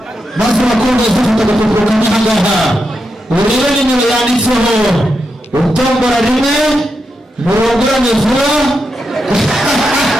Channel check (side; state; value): both; normal; correlation 0.86